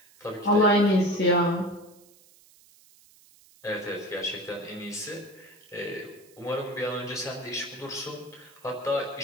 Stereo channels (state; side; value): noise; right; hiss, 27 dB below the sound